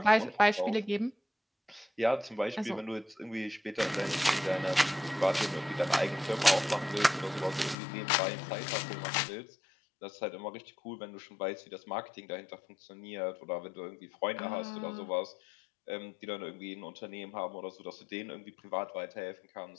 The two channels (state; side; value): drops out; right; at 7.8 s